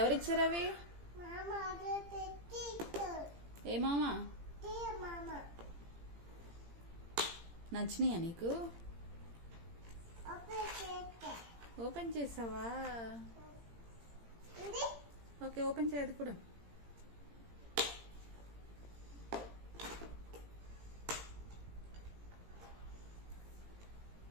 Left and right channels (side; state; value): left; late; 17 ms